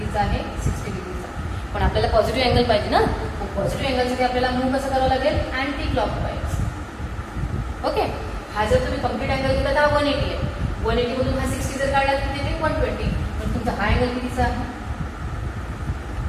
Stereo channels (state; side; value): identical; both; correlation 1.00